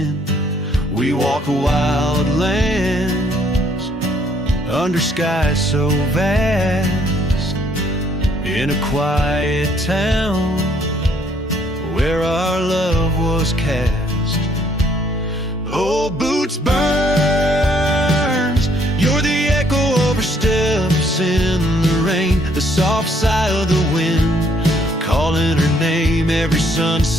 We walk wild lands under skies so vast, in a quiet town where our love was cast. Oh, boots burns, you're the echo of her steps in the rain, the soft sigh of the wind, calling her name. Every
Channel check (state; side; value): normal; both; correlation 0.66